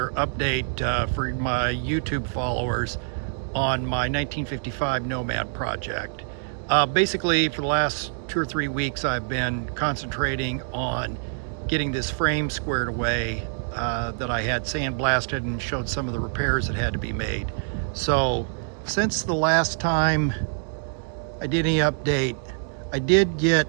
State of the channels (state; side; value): silent; left; digital silence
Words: update for my YouTube followers on my 1955 Nomad project. Basically, for the last 2 or 3 weeks, I've been concentrating on getting this frame squared away that I had sandblasted and showed some of the repairs that had to be made. So, since the last time I did any update, I did